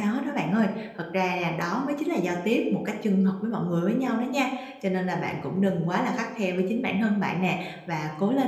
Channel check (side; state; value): both; identical; correlation 1.00